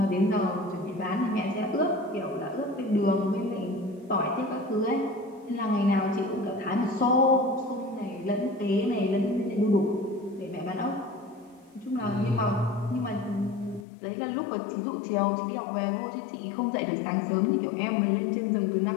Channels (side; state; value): right; drops out; at 13.9 s